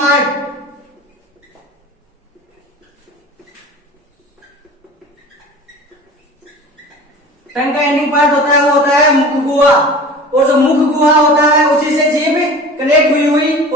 टंग का एंडिंग पार्ट होता है वो होता है मुख गुहा। और जो मुख गुहा होता है उसी से जीभ कनेक्ट हुई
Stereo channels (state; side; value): normal; both; correlation 0.39